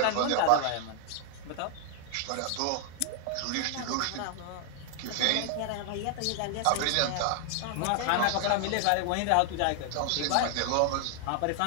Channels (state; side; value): different; both; correlation 0.00